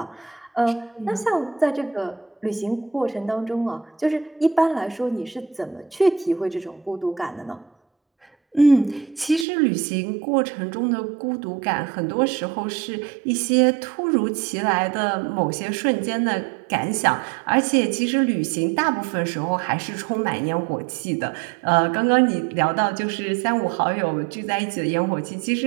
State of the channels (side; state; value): left; drops out; at 9.5 s